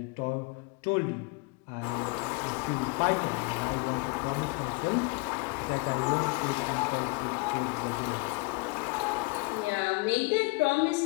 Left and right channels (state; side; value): quieter; right; 28.9 dB